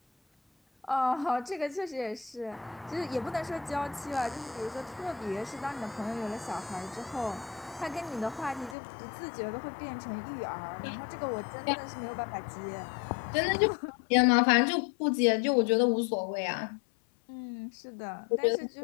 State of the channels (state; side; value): drops out; right; at 8.8 s